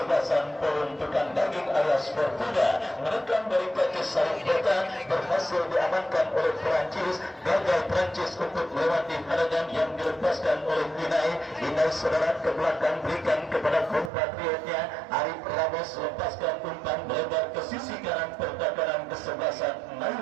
kesebelasan peruntukan daging alias Fortuna menekan dari kaki Sarip Bota berhasil diamankan oleh Perancis. Gagal Perancis untuk melewati halangan yang dilepaskan oleh Inai. Inai saudara ke belakang berikan kepada kompatriotnya Arif Ramos, lepaskan umpan melebar ke sisi kanan pertahanan kesebelasan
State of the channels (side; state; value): left; drops out; at 14.1 s